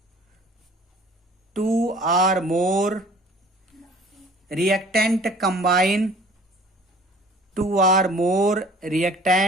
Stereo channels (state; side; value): normal; both; correlation 0.50